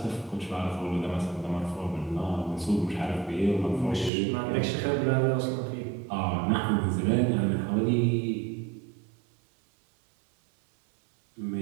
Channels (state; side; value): drops out; left; at 4.1 s